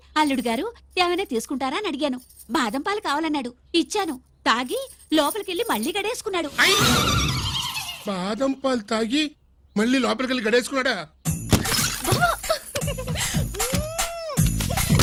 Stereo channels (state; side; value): identical; both; correlation 1.00